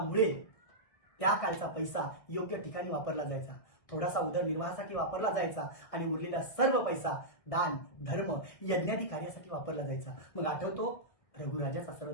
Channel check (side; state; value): right; late; 1.8 ms